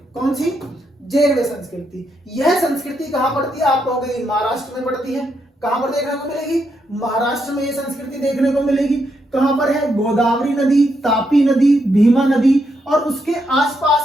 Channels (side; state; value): both; normal; correlation 0.80